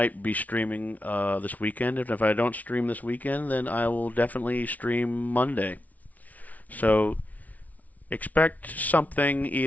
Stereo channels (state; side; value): late; right; 0.073 ms